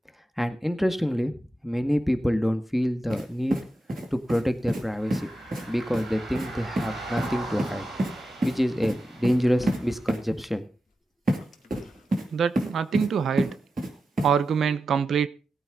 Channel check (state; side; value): normal; both; correlation 0.91